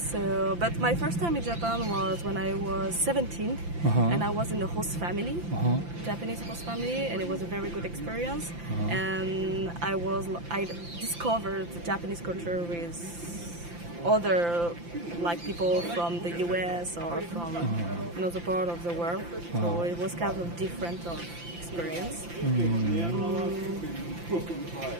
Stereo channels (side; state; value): left; late; 5.8 ms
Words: but my first time in Japan was when I was 17, and I was in a host family, Japanese host family, and it was a very good experience. And I discovered the Japanese culture with other like people from the US or from another part of the world. So it was kind of different experience.